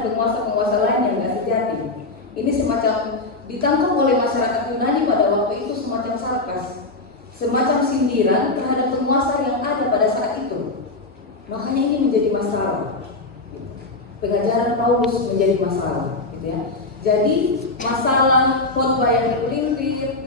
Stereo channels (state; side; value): quieter; right; 3.2 dB